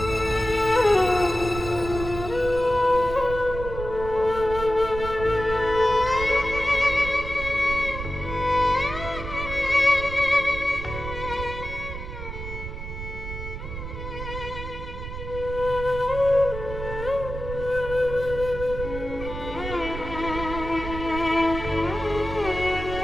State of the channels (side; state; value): right; noise; rumble, 8 dB below the sound